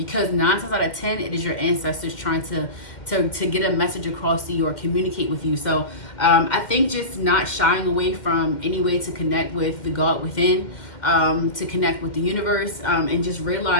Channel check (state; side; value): late; right; 2.1 ms